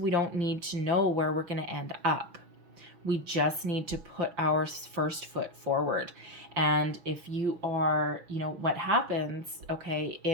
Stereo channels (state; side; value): late; left; 6.2 ms